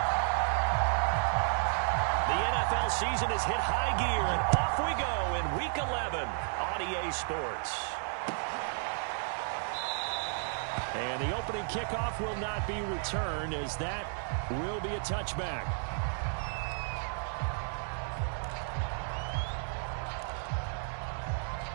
Season has hit high gear, and off we go in Week 11 on EA Sports. And the opening kickoff will not be returned, as that will be a touchback.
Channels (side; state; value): left; silent; 56 dB below the other